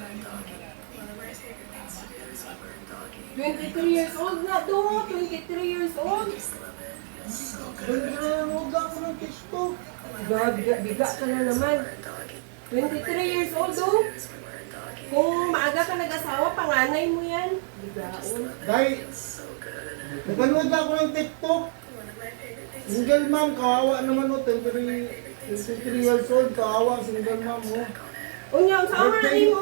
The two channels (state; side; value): silent; left; digital silence